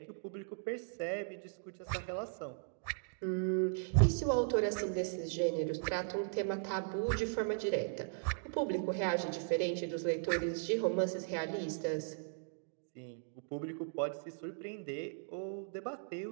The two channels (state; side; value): silent; left; digital silence